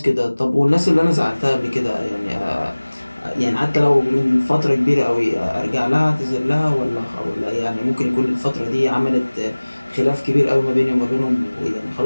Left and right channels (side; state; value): both; inverted; correlation -1.00